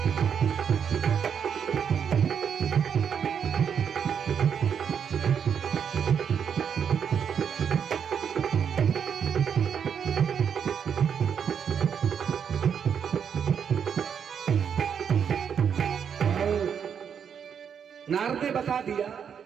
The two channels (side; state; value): left; quieter; 7.5 dB